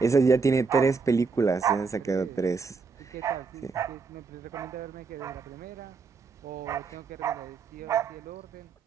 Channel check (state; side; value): quieter; left; 4.8 dB